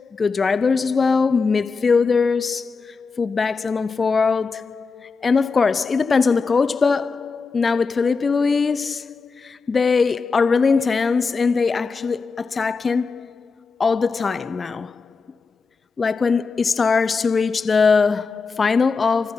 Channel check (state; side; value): quieter; right; 4.7 dB